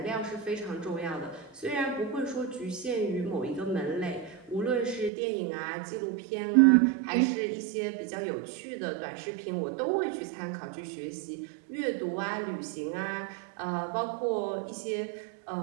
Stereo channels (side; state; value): left; drops out; at 5.1 s